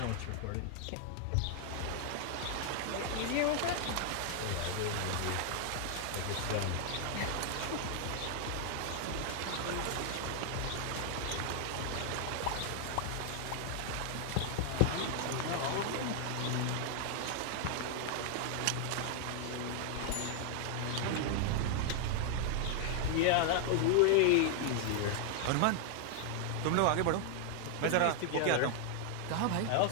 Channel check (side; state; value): both; different; correlation 0.00